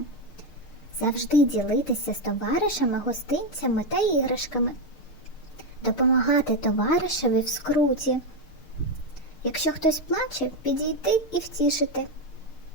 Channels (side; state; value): right; late; 6.6 ms